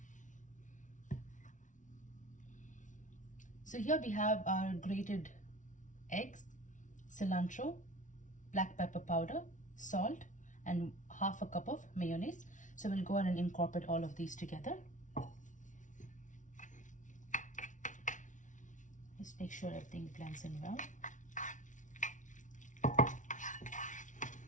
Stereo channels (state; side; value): late; right; 0.37 ms